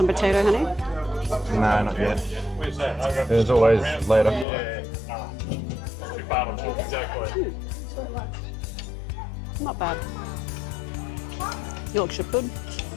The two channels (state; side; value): drops out; right; at 4.5 s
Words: potato, honey? No, not yet. There's always later. Not bad. Yorkshire pud.